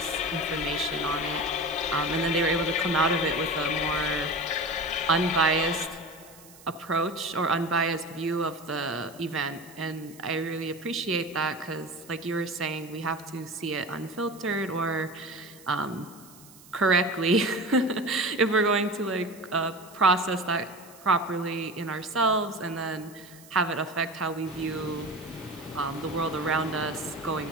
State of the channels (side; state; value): right; noise; hiss, 22 dB below the sound